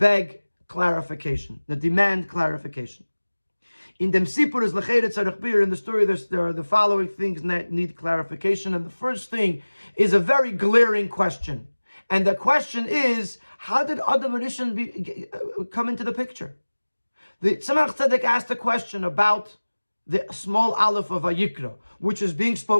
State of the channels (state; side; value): inverted; both; correlation -1.00